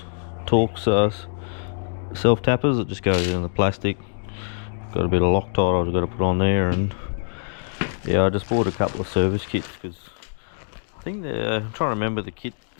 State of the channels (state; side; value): silent; right; digital silence